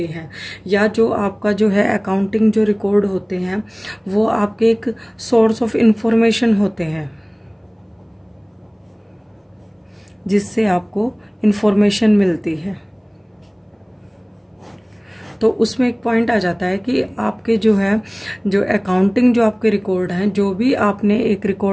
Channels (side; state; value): both; identical; correlation 1.00